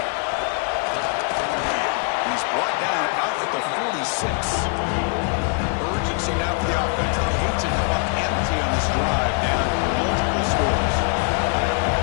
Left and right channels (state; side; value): quieter; right; 38.3 dB